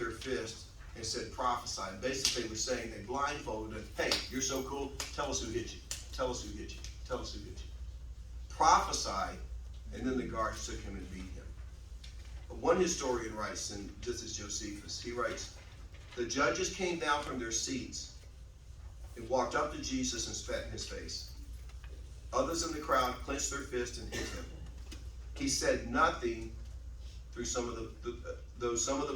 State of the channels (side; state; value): both; identical; correlation 1.00